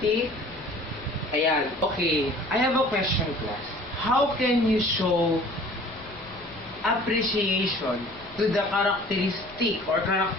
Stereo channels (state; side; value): noise; left; rumble, 22 dB below the sound